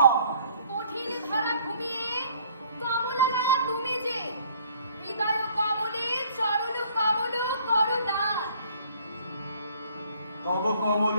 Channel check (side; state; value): both; inverted; correlation -0.58